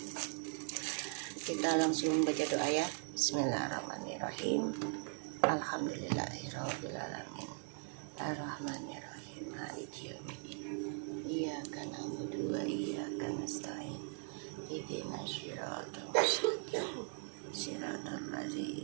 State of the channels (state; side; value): silent; left; 51 dB below the other